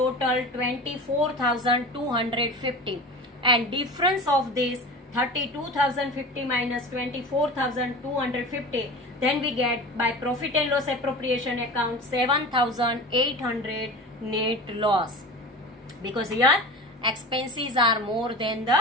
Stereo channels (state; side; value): normal; both; correlation 0.33